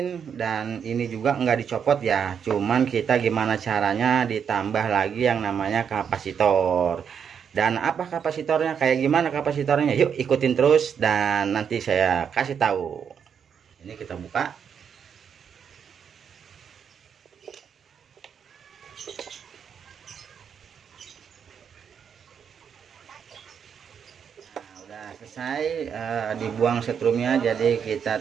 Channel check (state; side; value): quieter; left; 7.4 dB